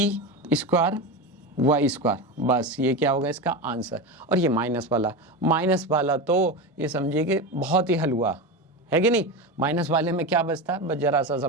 स्क्वायर y स्क्वायर, बस ये क्या होगा इसका आंसर। और ये माइनस वाला तो ये समझिए कि बहुत ही हलवा है कि नहीं। माइनस वाले में क्या बचता है, बस जरा सा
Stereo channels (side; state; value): both; normal; correlation 0.20